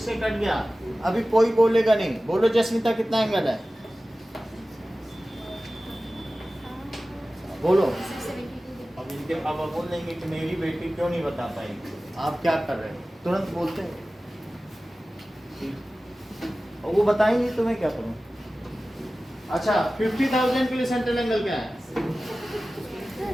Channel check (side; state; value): both; normal; correlation 0.96